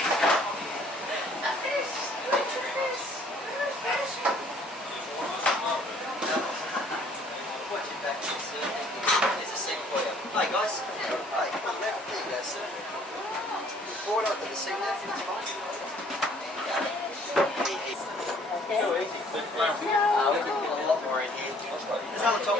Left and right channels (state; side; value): normal; both; correlation 0.59